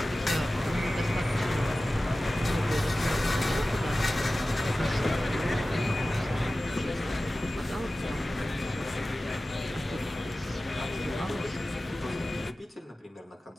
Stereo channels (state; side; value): normal; both; correlation 0.96